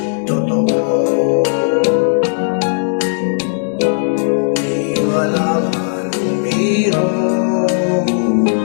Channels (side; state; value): right; silent; digital silence